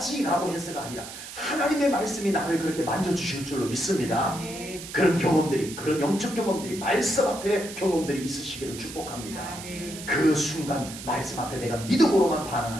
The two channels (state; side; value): noise; right; hiss, 12 dB below the sound